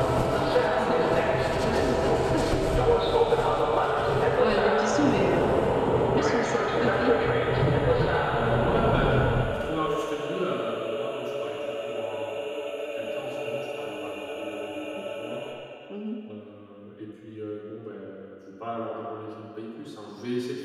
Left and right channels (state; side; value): identical; both; correlation 1.00